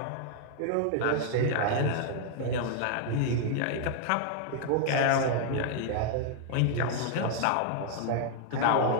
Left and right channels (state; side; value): different; both; correlation 0.00